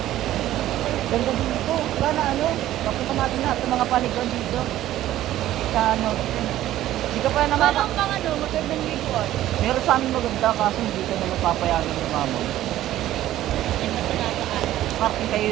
Ganda dito. Wala na ano. Papunta natin lahat ng mga paliguan dito. Sa ano. Hindi ka pa nakaka... Parang pang ano, magandang liguan. Meron sa amin maganda kaso hindi ka na mapapayagan ng mama. Ay, matanataan. Parking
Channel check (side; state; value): left; quieter; 13.8 dB